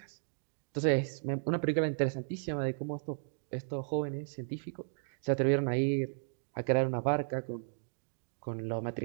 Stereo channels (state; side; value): silent; left; digital silence